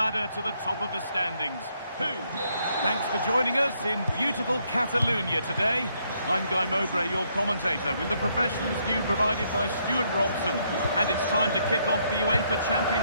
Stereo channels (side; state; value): both; inverted; correlation -0.72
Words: to the top of the standings. Thanks for joining us in beautiful Catalonia today. I'm Guy Mowbray, your commentator, with the professionals view provided by Stuart Robson. And it's time to kick off the UEFA